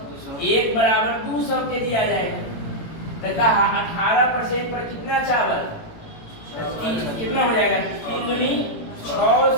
बराबर 200 केजी आ जाएगा। तो कहा 18% पर कितना चावल? कितना हो जाएगा? 3 दूनी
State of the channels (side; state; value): right; late; 18 ms